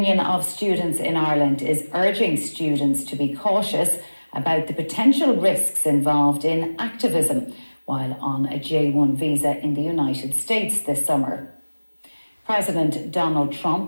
of Students in Ireland is urging students to be cautious about the potential risks involved in activism while on a J1 visa in the United States this summer. President Donald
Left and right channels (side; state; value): both; inverted; correlation -1.00